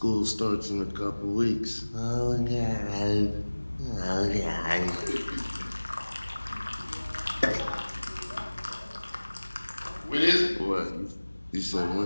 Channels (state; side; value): inverted; both; correlation -1.00